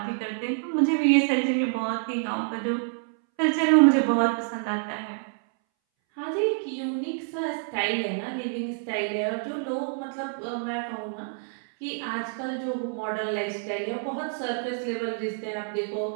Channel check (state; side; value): silent; left; 60 dB below the other